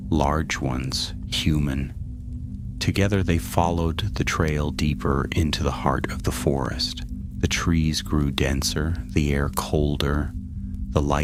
large ones, human." Together they followed the trail deeper into the heart of the forest. The trees grew denser, the air colder. The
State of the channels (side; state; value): both; identical; correlation 1.00